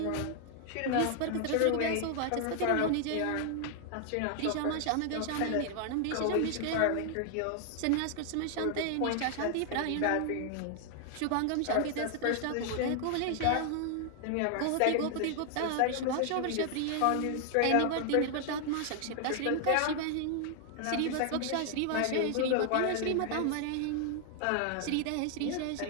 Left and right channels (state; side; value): different; both; correlation 0.00